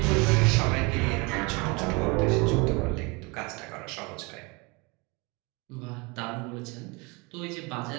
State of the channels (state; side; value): quieter; left; 27.9 dB